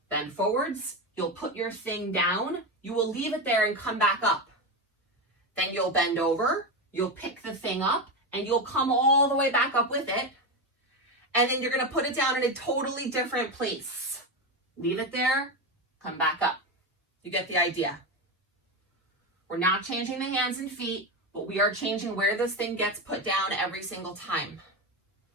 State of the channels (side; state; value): both; normal; correlation 0.15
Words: bend forwards, you'll put your thing down, you will leave it there and come back up. Then you'll bend over, you'll pick the thing up, and you'll come all the way back up with it. And then you're going to put it down in a totally different place. Leave it there, come back up. You get the idea. We're not changing the hands and feet, but we are changing where this thing gets put down every single time.